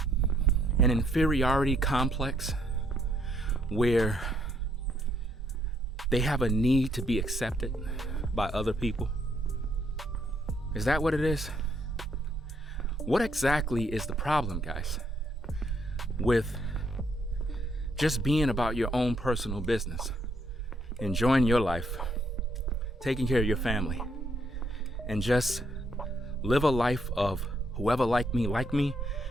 an inferiority complex where they have a need to be accepted by other people? Is that what it is? What exactly is the problem, guys, with just being about your own personal business, enjoying your life, taking care of your family, and just live a life of whoever like me,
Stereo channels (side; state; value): both; normal; correlation 0.72